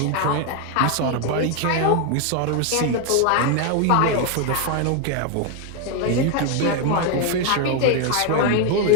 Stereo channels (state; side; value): different; both; correlation 0.01